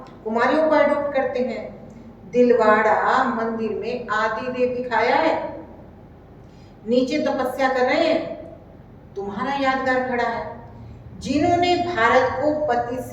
कुमारियों को एडॉप्ट करते हैं। दिलवाड़ा मंदिर में आदि देव दिखाया है, नीचे तपस्या कर रहे हैं, तुम्हारा यादगार खड़ा है। जिन्होंने भारत को पति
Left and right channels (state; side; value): identical; both; correlation 1.00